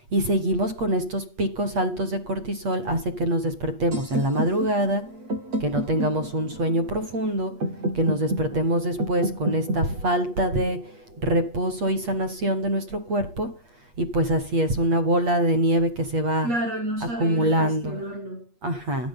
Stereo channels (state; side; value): late; left; 8.4 ms